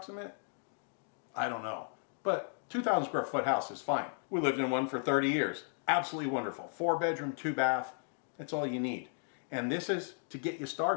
I don't know. But 2,000 square foot house is fine. We lived in one for 30 years. Absolutely wonderful. 4-bedroom, 2-bath. That's all you need. And this is to get you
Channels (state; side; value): silent; right; 54 dB below the other